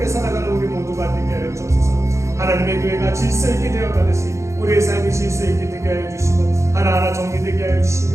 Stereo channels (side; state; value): left; late; 0.14 ms